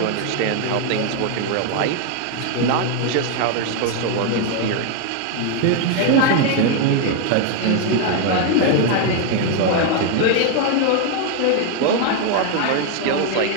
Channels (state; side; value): different; both; correlation 0.01